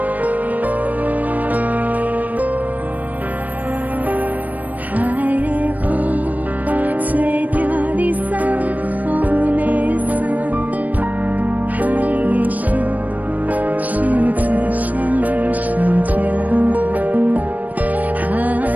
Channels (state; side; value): late; left; 0.077 ms